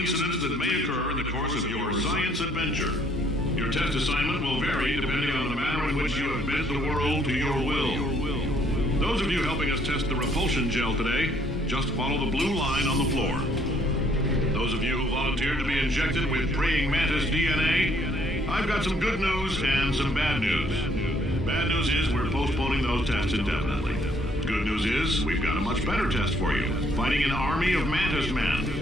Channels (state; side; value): normal; both; correlation 0.66